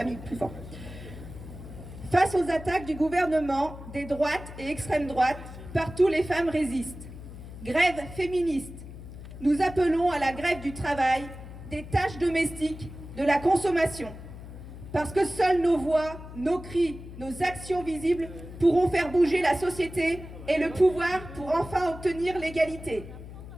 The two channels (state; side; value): noise; left; hum, 13 dB below the sound